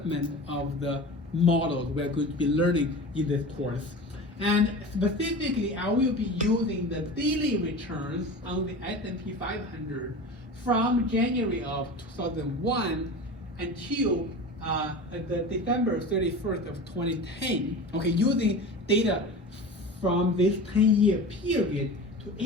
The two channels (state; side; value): normal; both; correlation 0.32